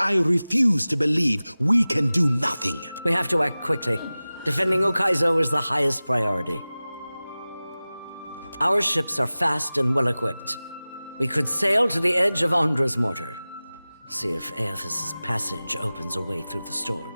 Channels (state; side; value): inverted; both; correlation -0.98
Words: refuse to believe we can do nothing. We have to act quickly. Defending Ukaizo is the highest priority. Our ships are fast and well-equipped. We could sail to the edge of Andra's mortar. See if Aethys' passage opens a way through the